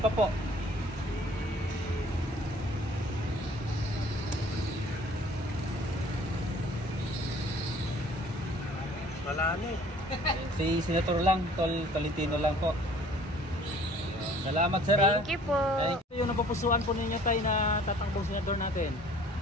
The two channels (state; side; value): normal; both; correlation 0.53